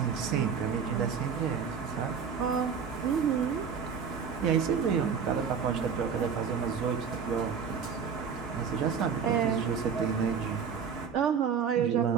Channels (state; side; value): quieter; left; 6.6 dB